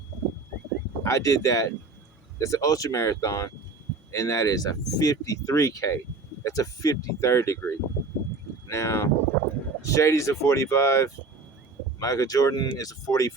I did that. That's an ultra marathon, and that is a 53K. That's a 53rd degree. Now, Shady's a 45. Michael Jordan is a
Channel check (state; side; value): quieter; left; 3.9 dB